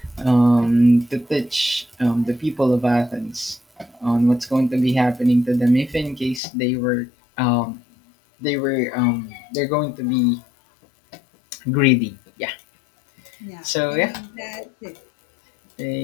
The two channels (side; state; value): right; drops out; at 6.4 s